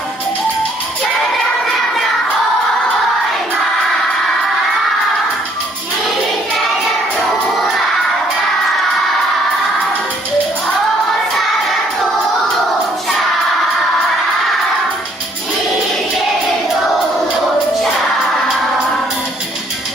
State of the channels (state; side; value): normal; both; correlation 0.64